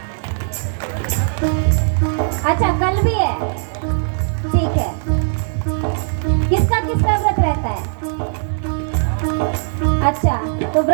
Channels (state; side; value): silent; left; digital silence